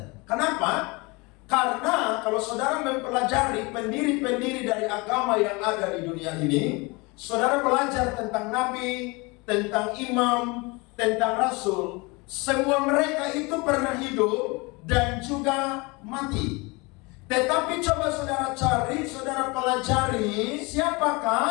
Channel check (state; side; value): quieter; right; 26.6 dB